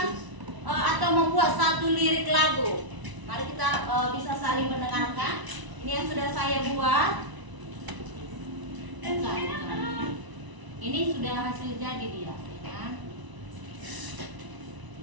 atau membuat satu lirik lagu. Mari kita bisa saling mendengarkan. Ini yang sudah saya buat. Ini sudah hasil jadi dia, ya kan?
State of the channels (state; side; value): late; left; 1.0 ms